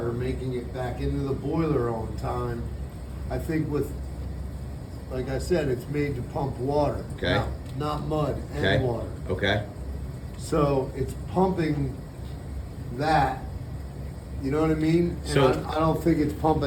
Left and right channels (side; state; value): both; identical; correlation 1.00